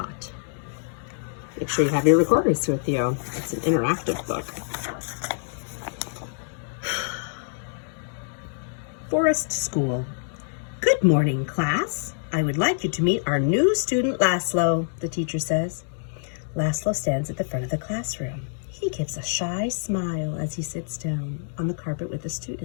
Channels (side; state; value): right; silent; digital silence